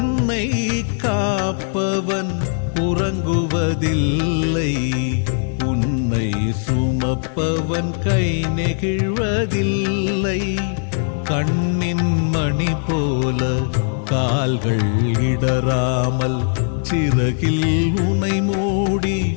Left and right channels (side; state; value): right; silent; 66 dB below the other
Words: காப்பவன் உறங்குவதில்லை, உன்னை சுமப்பவன் கை நெகிழ்வதில்லை. கண்ணின் மணி போல கால்கள் இடராமல் சிறகில் உனை மூடி